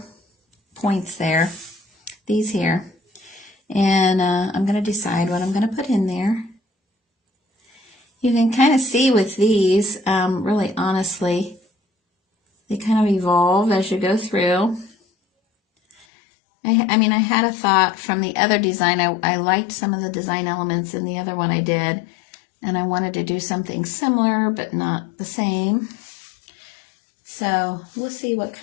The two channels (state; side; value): drops out; right; at 16.1 s